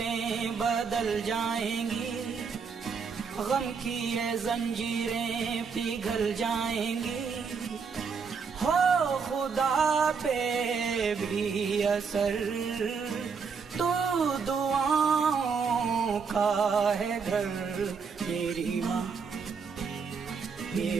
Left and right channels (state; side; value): quieter; left; 5.7 dB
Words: बदल जाएंगी, गम की ये जंजीरें पिघल जाएंगी, हो खुदा पे भी असर तो दुआओं का है घर। मेरी माँ